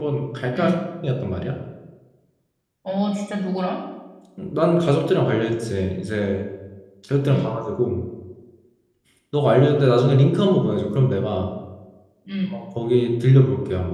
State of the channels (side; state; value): both; identical; correlation 1.00